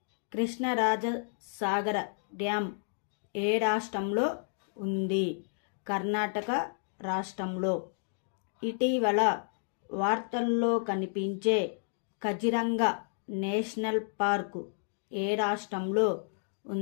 కృష్ణరాజసాగర డ్యామ్ ఏ రాష్ట్రంలో ఉంది? కర్ణాటక రాష్ట్రంలో. ఇటీవల వార్తల్లో కనిపించే కజిరంగా నేషనల్ పార్కు ఏ రాష్ట్రంలో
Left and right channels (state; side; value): silent; right; digital silence